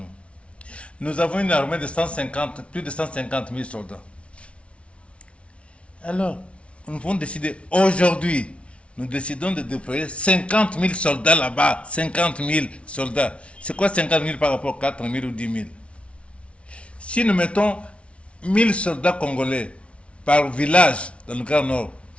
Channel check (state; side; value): late; right; 0.061 ms